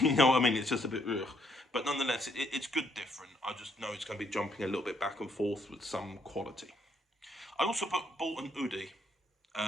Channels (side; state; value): both; normal; correlation 0.71